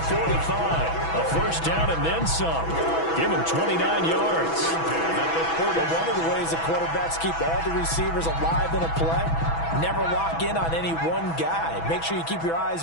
A first down and then some. Give him 29 yards. One of the ways the quarterbacks keep all the receivers alive in a play, never lock in on any one guy. Make sure you keep your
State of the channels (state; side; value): late; right; 6.1 ms